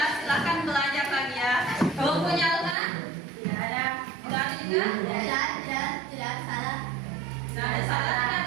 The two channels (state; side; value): drops out; left; at 2.8 s